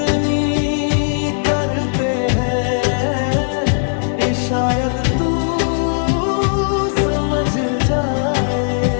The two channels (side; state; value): right; silent; digital silence